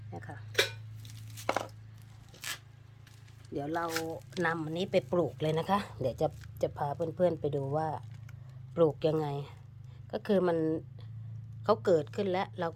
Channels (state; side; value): identical; both; correlation 1.00